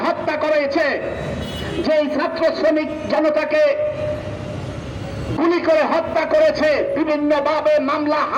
হত্যা করেছে, যেই ছাত্র শ্রমিক জনতাকে গুলি করে হত্যা করেছে, বিভিন্নভাবে মামলা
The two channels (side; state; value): both; identical; correlation 1.00